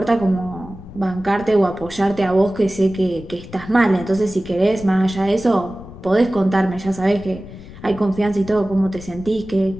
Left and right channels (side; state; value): left; noise; rumble, 16 dB below the sound